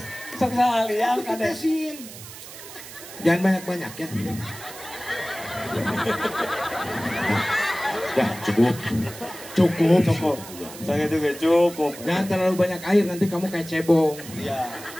sok salah liang Aku kadang. tetesin. Jangan banyak-banyak ya. Dah cukup. Cukup. Saya juga cukup. Jangan terlalu banyak air, nanti kamu kayak cebong. Iya.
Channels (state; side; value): noise; right; hiss, 15 dB below the sound